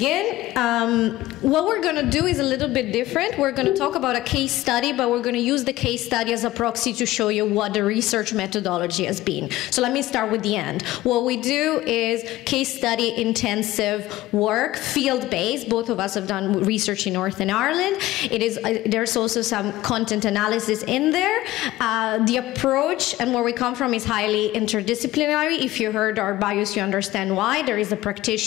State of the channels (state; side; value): quieter; right; 16.6 dB